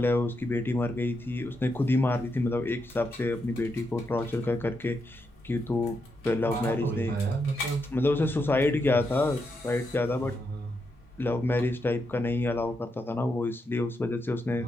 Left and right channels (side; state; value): both; normal; correlation 0.83